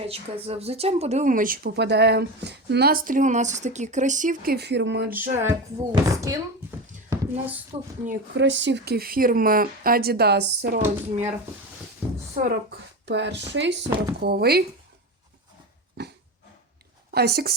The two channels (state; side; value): normal; both; correlation 0.23